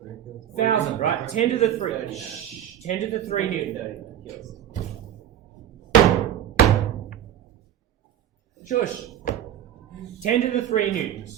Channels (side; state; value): left; quieter; 11.0 dB